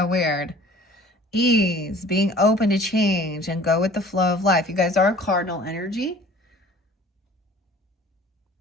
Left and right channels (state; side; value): normal; both; correlation 0.48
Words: weird. Ease, being open to change and go with the flow of life. You guys are cardinal energy.